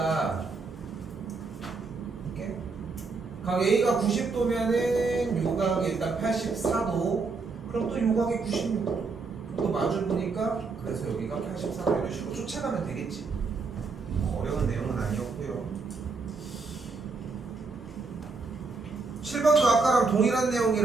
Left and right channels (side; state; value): left; quieter; 4.3 dB